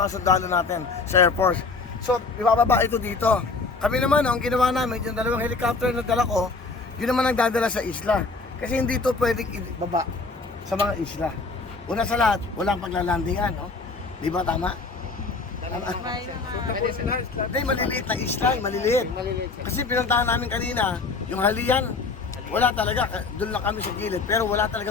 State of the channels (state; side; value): quieter; right; 4.1 dB